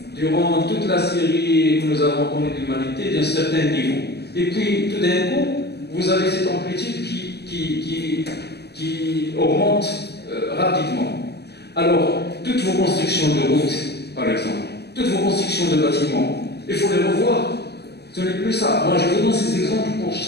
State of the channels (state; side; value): late; right; 0.48 ms